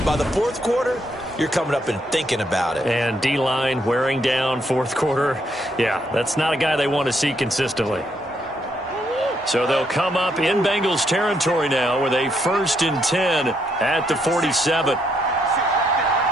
By the fourth quarter, you're coming up and thinking about it. And D-line wearing down fourth quarter. Yeah, that's not a guy they want to see consistently. So they'll come up in Bengals territory now with a 1st and 10 at the 47.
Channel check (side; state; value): both; normal; correlation 0.75